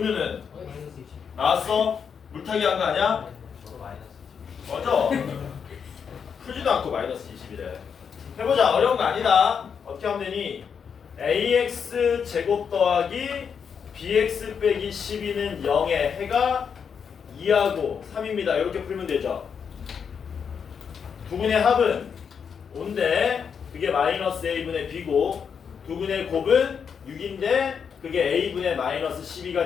마이너스 20. 나왔어. 물타기 한 거 아니야? 저도 마이너스 20. 맞아. 풀지도 않고 마이너스 20이래. 해보자. 어려운 거 아니다. 어떻게 하면 되니? ax 제곱 더하기 bx 빼기 12는 0의 해가 2하고 3입니다. 이렇게 풀면 되죠. 두분의 합은 5인데 그게 마이너스 a분의 b고 두분의 곱은 6인데 그게 a분의 마이너스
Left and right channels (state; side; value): quieter; right; 6.8 dB